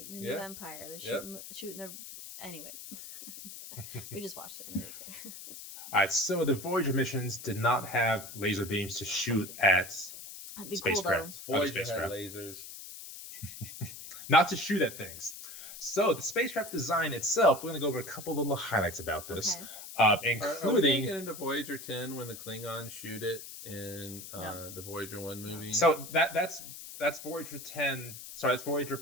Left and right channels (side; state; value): left; noise; hiss, 12 dB below the sound